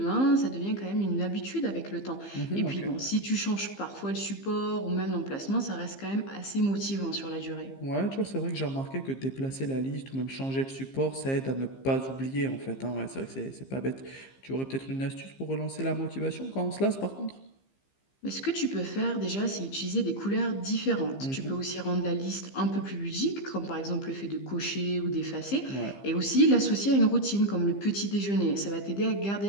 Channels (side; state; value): right; late; 15 ms